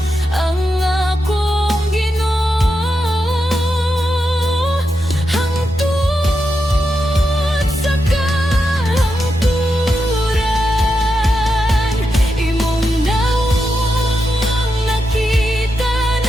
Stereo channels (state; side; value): normal; both; correlation 0.86